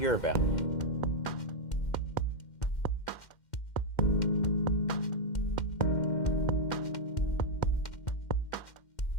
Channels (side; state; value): right; late; 2.1 ms